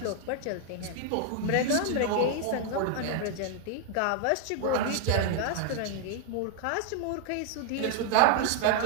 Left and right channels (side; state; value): both; different; correlation 0.00